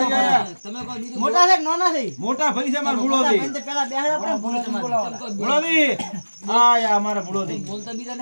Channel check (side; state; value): both; inverted; correlation -1.00